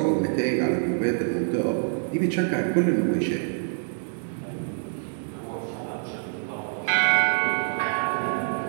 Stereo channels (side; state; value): left; silent; digital silence